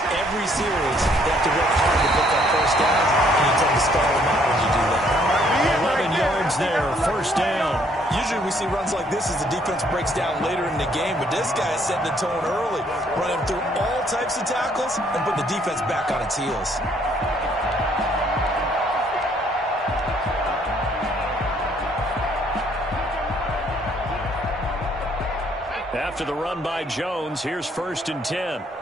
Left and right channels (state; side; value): normal; both; correlation 0.65